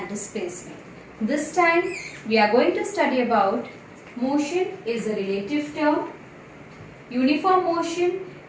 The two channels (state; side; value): identical; both; correlation 1.00